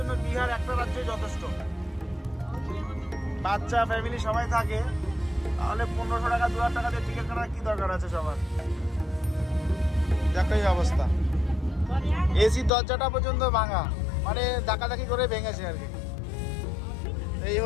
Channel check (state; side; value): drops out; right; at 12.7 s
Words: বিহার একটা রাজ্যই যথেষ্ট। বাচ্চা ফ্যামিলি সবাই থাকে, তাহলে 1500 টাকা 2000 টাকা দিয়ে টিকিট কাটার কি দরকার আছে সবার। একই অবস্থা, এসি দরজাটা পর্যন্ত ভাঙা, মানে ধাক্কাধাক্কি করে ভেঙেছে আর কি। এই